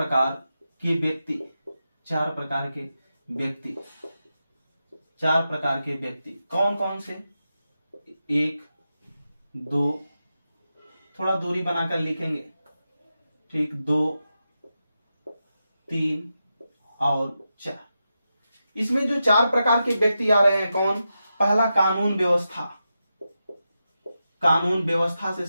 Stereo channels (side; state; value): both; inverted; correlation -0.89